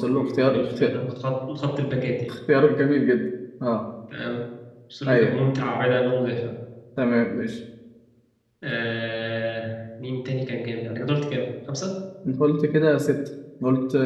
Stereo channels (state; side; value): identical; both; correlation 1.00